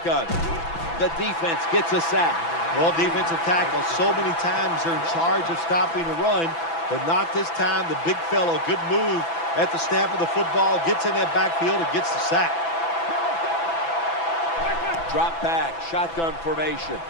The defense gets a sack. Well, defensive tackle, so many times they're in charge of stopping the run, but not this time. The big fellow, good move at the snap of the football, gets in that backfield and gets the sack. Drop back, shotgun formation.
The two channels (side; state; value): right; late; 6.0 ms